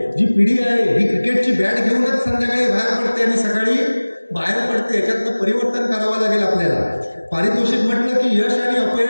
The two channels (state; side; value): inverted; both; correlation -1.00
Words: जी पिढी आहे ही क्रिकेटची बॅट घेऊनच संध्याकाळी बाहेर पडते आणि सकाळी बाहेर पडते. याच्यातनं परिवर्तन करावं लागेल आपल्याला. पारितोषिक म्हटलं की यश आणि